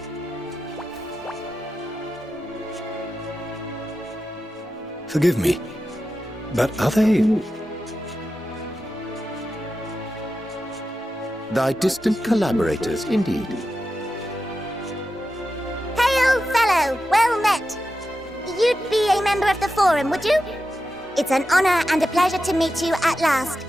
Forgive me, but are they... Thy distant collaborators, indeed. Hail, fellow! Well met! You'd be a member of the Forum, would you? It's an honor and a pleasure to meet you at last.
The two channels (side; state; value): both; normal; correlation 0.91